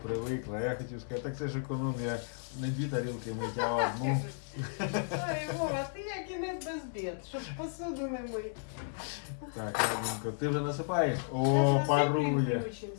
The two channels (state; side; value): silent; right; digital silence